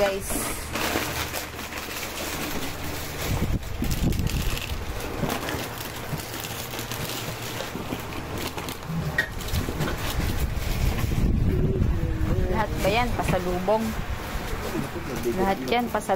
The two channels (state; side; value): identical; both; correlation 1.00